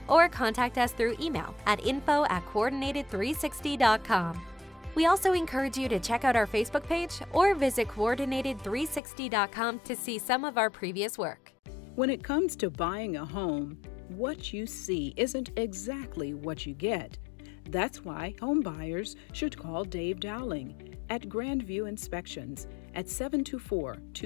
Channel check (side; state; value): right; drops out; at 9.0 s